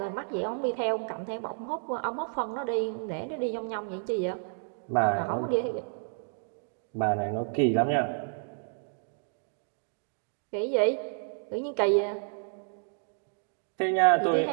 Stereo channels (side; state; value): left; silent; digital silence